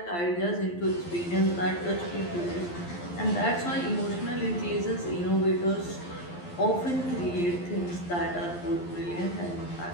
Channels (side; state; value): right; late; 11 ms